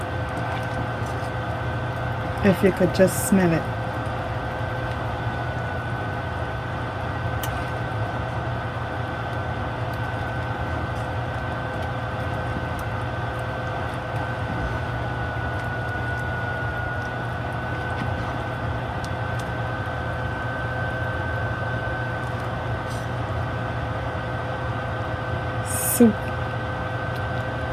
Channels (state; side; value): identical; both; correlation 1.00